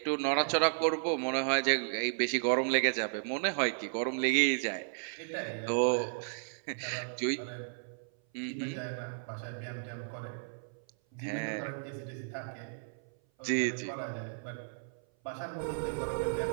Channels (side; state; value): left; silent; 55 dB below the other